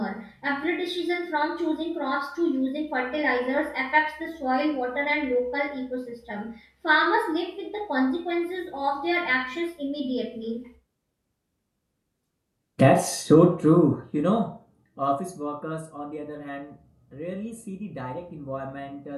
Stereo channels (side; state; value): both; identical; correlation 1.00